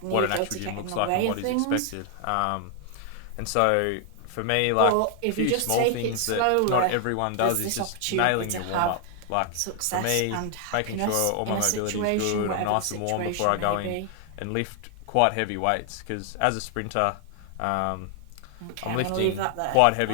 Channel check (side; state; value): both; different; correlation 0.00